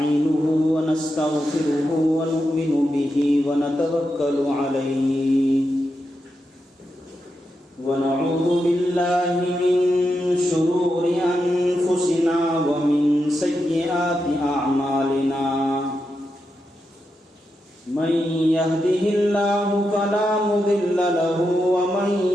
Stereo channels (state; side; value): normal; both; correlation 0.86